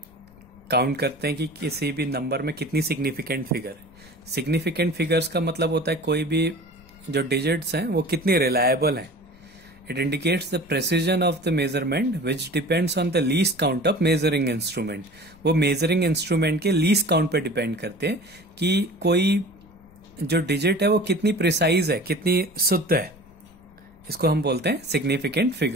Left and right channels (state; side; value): noise; left; rumble, 26 dB below the sound